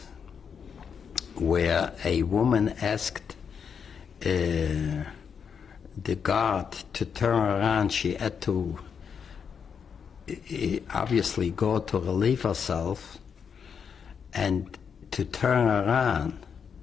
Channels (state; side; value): quieter; right; 6.8 dB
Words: where a woman asked the guard to turn around. She had to obviously go to relieve herself and to turn around.